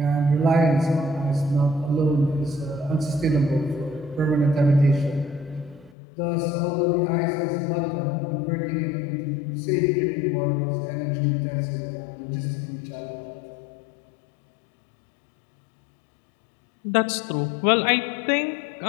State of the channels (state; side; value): drops out; right; at 6.0 s